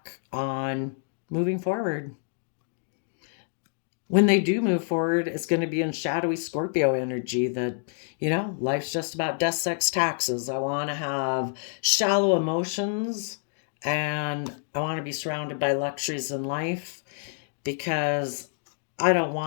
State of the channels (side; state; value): right; silent; 60 dB below the other